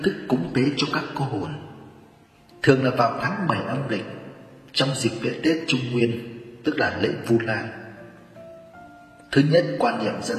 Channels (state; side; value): identical; both; correlation 1.00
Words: thức cúng tế cho các cô hồn thường là vào tháng 7 âm lịch, trong dịp lễ Tết Trung Nguyên, tức là lễ Vu Lan. Thứ nhất, quan niệm